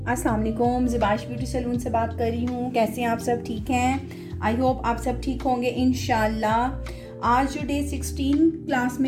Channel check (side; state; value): both; identical; correlation 1.00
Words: अस्सलाम वालेकुम, ज़िबाश beauty salon से बात कर रही हूँ। कैसे हैं आप सब? ठीक हैं? आई होप आप सब ठीक होंगे इंशाल्लाह। आज जो डे 16 क्लास